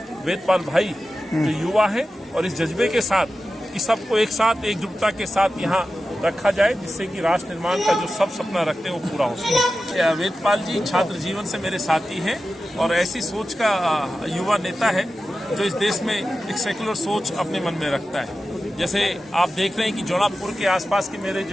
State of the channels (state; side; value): normal; both; correlation 0.93